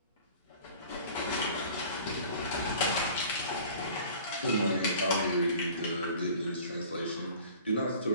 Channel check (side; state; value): both; inverted; correlation -0.46